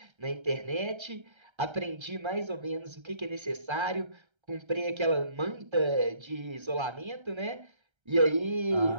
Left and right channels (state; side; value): late; left; 1.3 ms